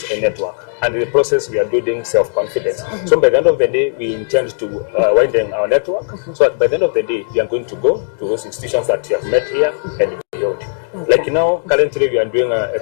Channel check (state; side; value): silent; right; digital silence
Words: and network. And in the process, we are building self-confidence. So by the end of the day, we intend to widen our network. So by the end of the day, we are going to go to those institutions that we have met here and beyond. Like now, currently we are doing a